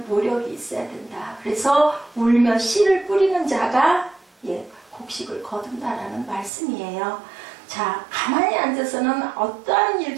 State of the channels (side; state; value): left; drops out; at 6.5 s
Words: 노력이 있어야 된다. 그래서 울며 씨를 뿌리는 자가 곡식을 거둔다라는 말씀이에요. 자, 가만히 앉아서는 어떠한